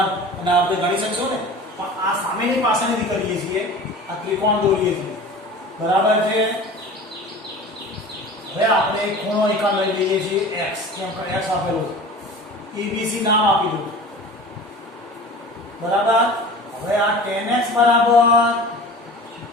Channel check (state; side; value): normal; both; correlation 0.38